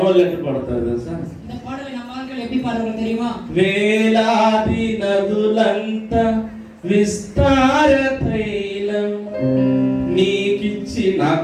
ఎట్లా పడతారు తెలుసా? இந்த பாடலை நம்ம ஆட்கள் எப்படி பாடுவாங்க தெரியுமா? వేలాది నదులంత విస్తార తైలం నీకిచ్చి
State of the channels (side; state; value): both; identical; correlation 1.00